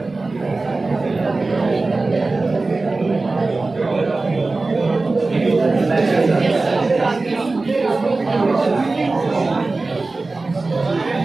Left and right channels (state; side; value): quieter; left; 3.5 dB